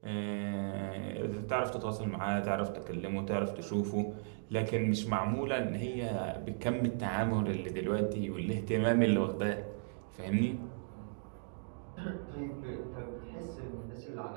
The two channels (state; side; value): silent; left; digital silence